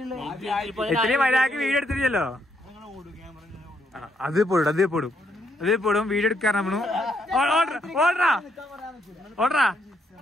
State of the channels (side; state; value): both; normal; correlation 0.75